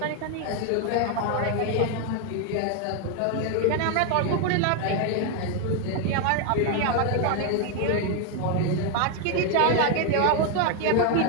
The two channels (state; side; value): different; both; correlation 0.01